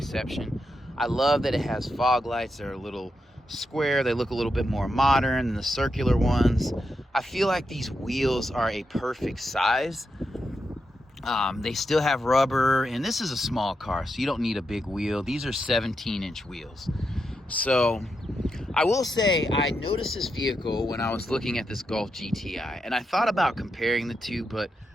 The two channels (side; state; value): both; normal; correlation 0.85